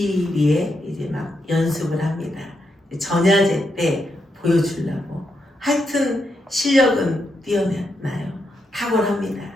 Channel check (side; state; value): both; normal; correlation 0.82